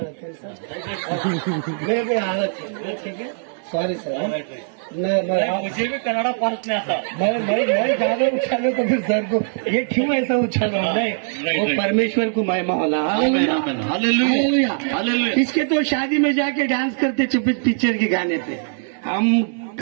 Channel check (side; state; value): left; silent; 65 dB below the other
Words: ಸರ್ सॉरी सर मुझे भी कन्नड़ा पास नहीं आता. मैं ज्यादा उछालो तो फिर सर को ये क्यों ऐसा उछालो नहीं वो परमेश्वर को महिमा होला हालेलुया, हालेलुया. इसके तो शादी में जाके डांस करते चुप पिक्चर के गाने पे हम